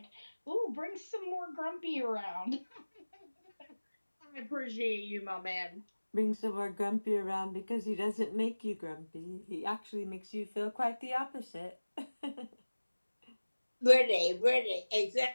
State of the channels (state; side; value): inverted; both; correlation -1.00